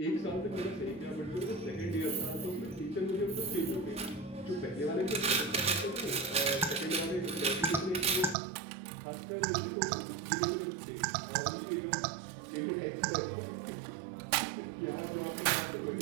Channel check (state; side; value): drops out; left; at 8.3 s